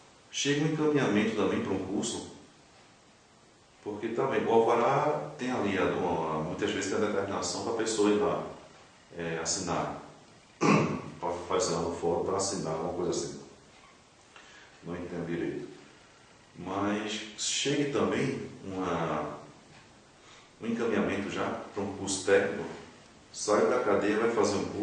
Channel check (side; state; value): both; identical; correlation 1.00